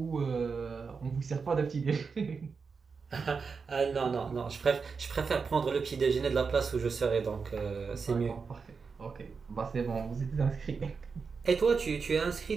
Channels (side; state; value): left; quieter; 5.2 dB